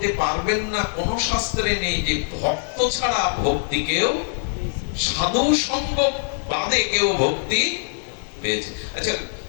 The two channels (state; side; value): silent; right; digital silence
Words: পারবেন না, কোন শাস্ত্রে নেই যে ভক্ত ছাড়া ভক্তি কেউ, সাধু সঙ্গ বাদে কেউ ভক্তি পেয়েছে। আচ্ছা,